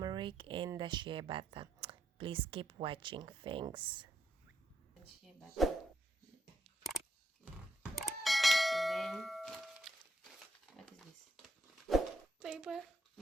and the shea butter. Please keep watching. Thanks. Shea butter. And then, what is this? Paper.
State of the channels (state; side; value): normal; both; correlation 0.78